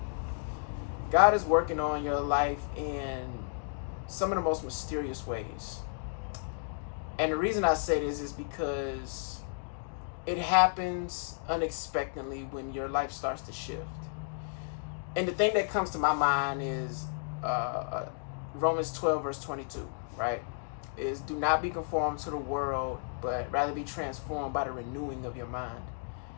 God is working on your life in some of the most mysterious ways. And the reason I say this is because it happens unexpectedly when your life starts to shift. And the thing that comes to my mind is Romans 12, verse 22, right? Is do not be conformed to the world, but rather be transformed by the renewing of your mind.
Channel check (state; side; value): silent; right; digital silence